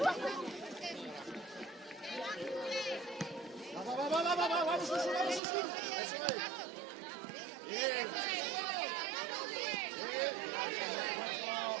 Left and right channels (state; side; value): drops out; left; at 5.4 s